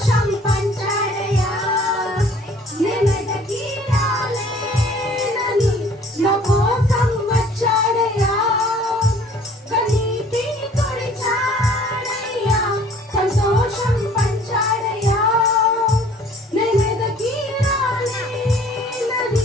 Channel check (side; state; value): both; normal; correlation 0.53